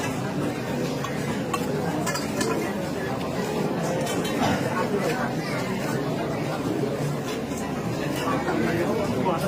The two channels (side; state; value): both; identical; correlation 1.00